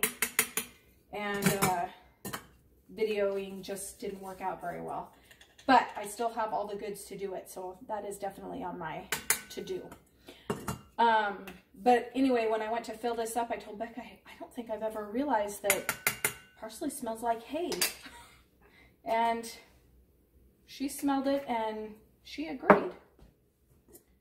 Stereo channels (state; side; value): identical; both; correlation 1.00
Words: And videoing just didn't work out very well. But I still have all the goods to do it, so that is definitely on my to-do. But anyway, when I went to fill this up, I told Becca, I don't think I've ever realized that parsley smells like hay. And she smelled it and she agreed.